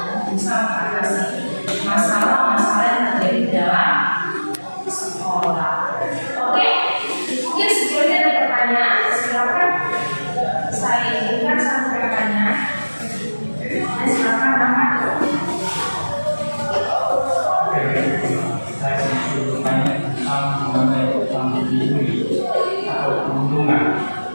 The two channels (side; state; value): both; inverted; correlation -1.00